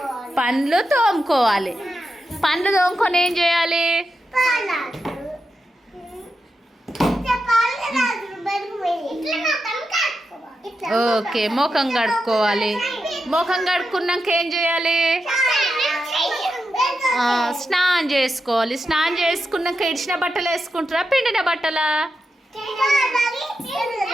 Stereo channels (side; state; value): both; normal; correlation 0.88